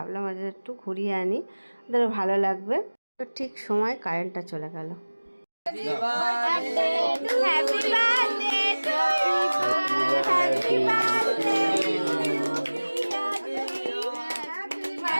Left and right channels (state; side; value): inverted; both; correlation -1.00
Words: ওদের একটু ঘুরিয়ে আনি, ওদের ভালো লাগবে। তো ঠিক সময় কারেন্টটা চলে গেল।